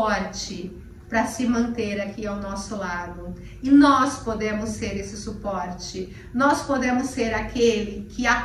para se manter aqui ao nosso lado. E nós podemos ser esse suporte. Nós podemos ser aquele que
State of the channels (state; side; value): identical; both; correlation 1.00